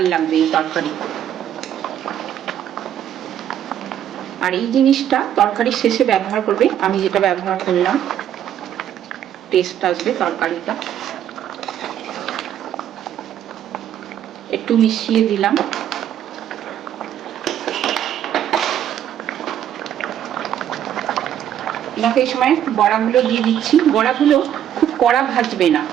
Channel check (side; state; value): left; quieter; 10.4 dB